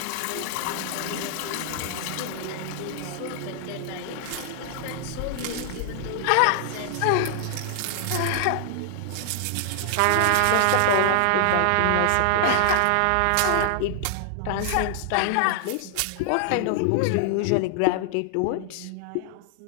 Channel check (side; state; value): both; different; correlation 0.00